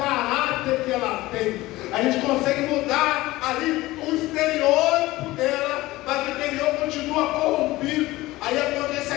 que ela tem. A gente consegue mudar ali o estereótipo dela, mas o interior continua corrompido. Aí acontece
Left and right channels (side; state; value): right; quieter; 18.4 dB